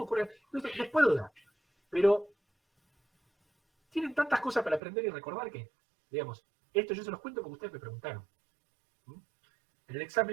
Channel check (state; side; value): drops out; left; at 4.8 s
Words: ocurre... Les puedo dar, pero tienen tantas cosas para aprender y recordar que, digamos, esto yo se los cuento porque ustedes me preguntaron. En el